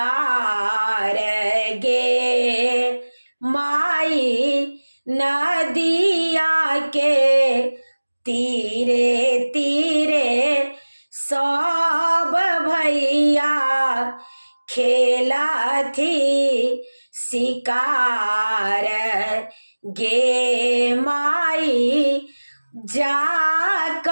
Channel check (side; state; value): both; inverted; correlation -1.00